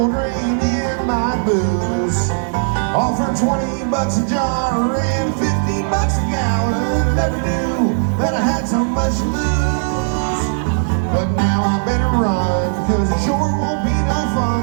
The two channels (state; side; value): silent; left; digital silence